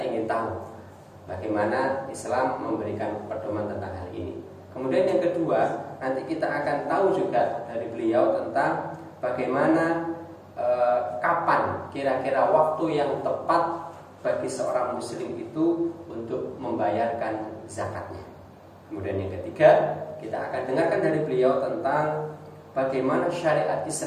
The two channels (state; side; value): identical; both; correlation 1.00